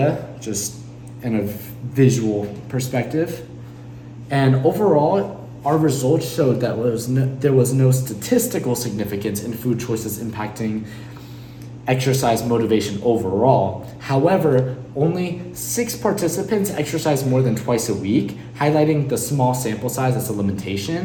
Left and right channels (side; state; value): both; identical; correlation 1.00